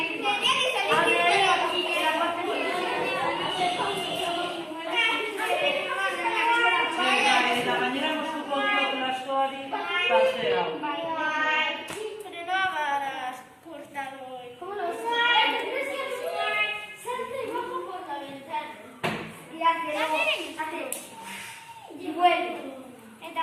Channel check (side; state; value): both; identical; correlation 1.00